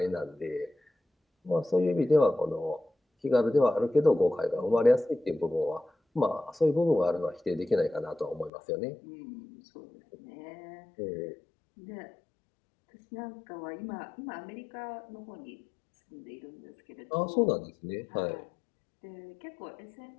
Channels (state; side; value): drops out; right; at 8.5 s